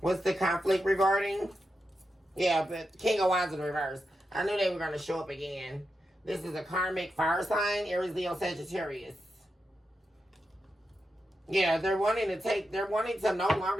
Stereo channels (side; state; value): both; normal; correlation 0.88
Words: the conflict regarding? Yeah, but King of Wands in reverse. I knew they were going to show up again. This is a karmic fire sign, Aries, Leo, Sagittarius. Yeah, they're wanting to no